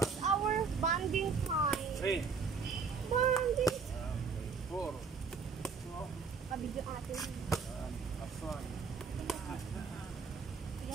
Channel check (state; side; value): quieter; left; 5.3 dB